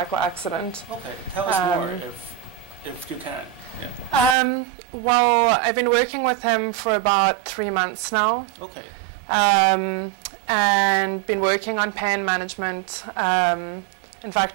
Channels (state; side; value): drops out; left; at 4.4 s